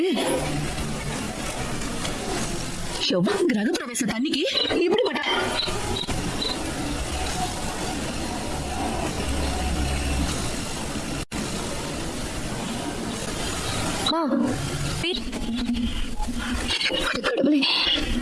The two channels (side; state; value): both; identical; correlation 1.00